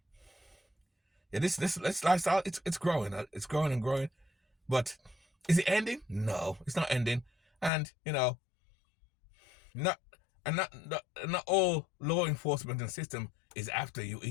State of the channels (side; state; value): right; drops out; at 7.7 s